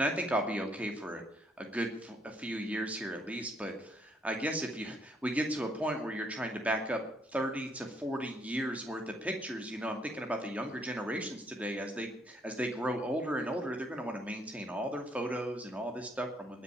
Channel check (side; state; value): both; normal; correlation 0.69